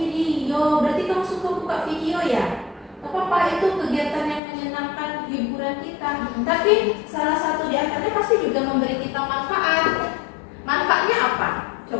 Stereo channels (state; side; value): drops out; right; at 4.4 s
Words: Berarti kamu suka buka video ya? Apa itu kegiatan yang menyenangkan hiburan kita. Tapi salah satu di antaranya pasti juga memberi kita manfaat. Manfaatnya apa?